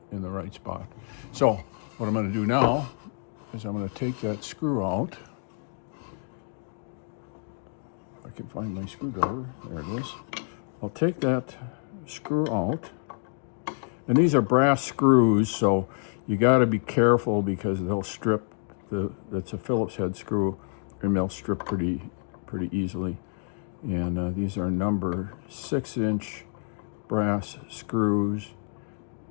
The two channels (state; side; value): silent; right; 59 dB below the other